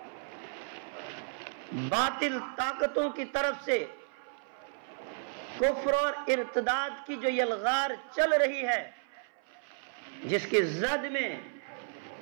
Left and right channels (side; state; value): left; silent; 56 dB below the other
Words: باطل طاقتوں کی طرف سے کفر اور ارتداد کی جو یلغار چل رہی ہے، جس کی زد میں